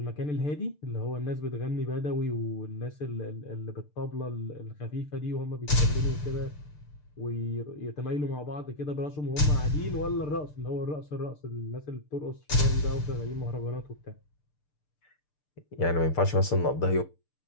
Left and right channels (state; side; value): late; right; 6.7 ms